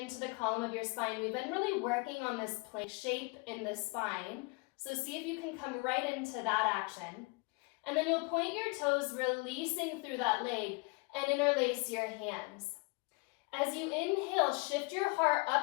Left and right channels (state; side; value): quieter; right; 28.4 dB